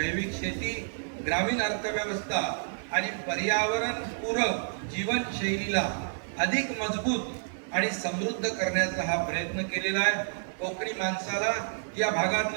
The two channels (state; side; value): silent; left; digital silence